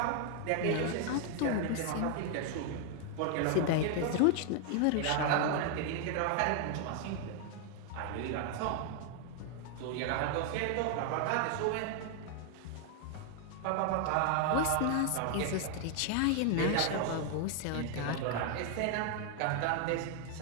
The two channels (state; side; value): different; both; correlation 0.00